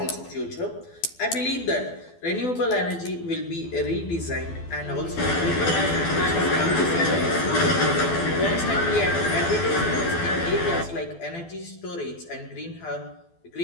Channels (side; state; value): right; late; 12 ms